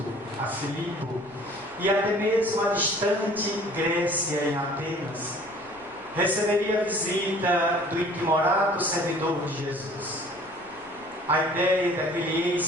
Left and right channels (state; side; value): noise; left; rumble, 29 dB below the sound